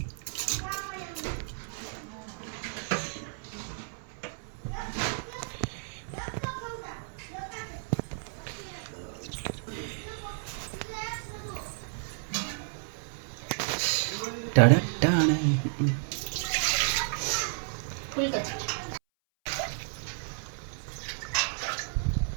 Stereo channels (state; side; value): silent; left; 56 dB below the other